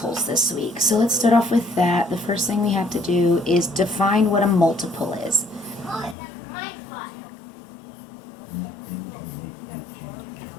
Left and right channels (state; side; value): drops out; right; at 6.2 s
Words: this week. So let's start off with that. The first thing we have to do is define what a multiple is.